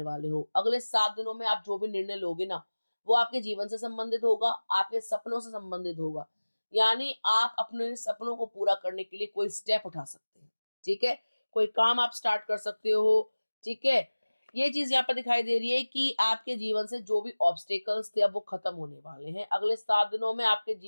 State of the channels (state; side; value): inverted; both; correlation -1.00